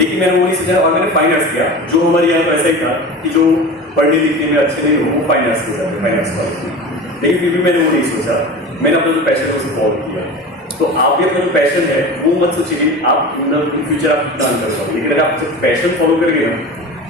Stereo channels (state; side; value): normal; both; correlation 0.32